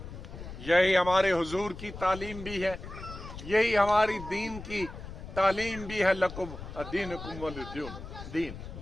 यही हमारे हुजूर की तालीम भी है, यही हमारी दीन की तालीम भी है। लकुम दीनुकुम वलिय दीन।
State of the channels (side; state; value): left; noise; rumble, 11 dB below the sound